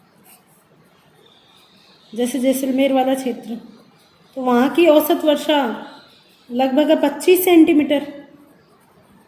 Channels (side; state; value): both; identical; correlation 1.00